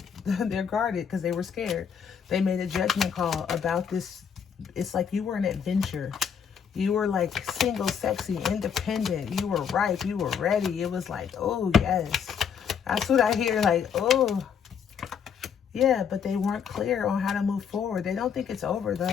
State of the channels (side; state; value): right; quieter; 7.3 dB